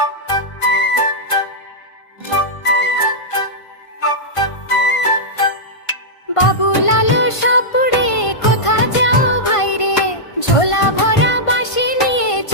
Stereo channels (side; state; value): right; late; 1.5 ms